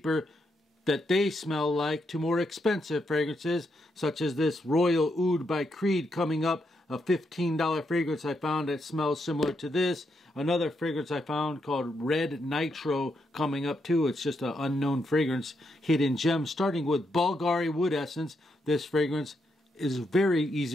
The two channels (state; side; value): normal; both; correlation 0.80